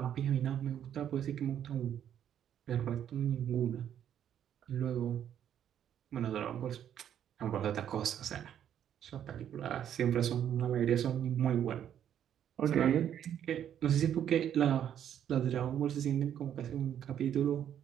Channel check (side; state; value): left; quieter; 9.8 dB